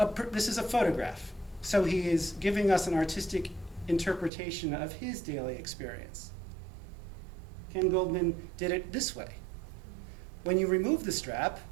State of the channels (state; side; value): drops out; left; at 4.3 s